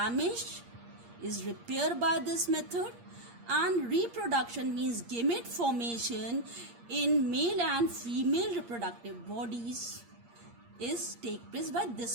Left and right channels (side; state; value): left; late; 8.6 ms